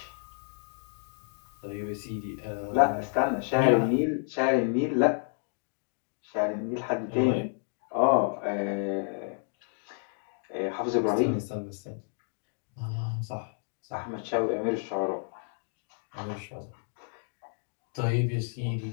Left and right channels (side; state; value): right; silent; 57 dB below the other